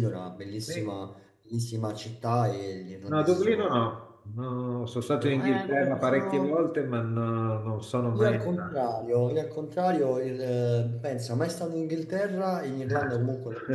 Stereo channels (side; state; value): both; identical; correlation 1.00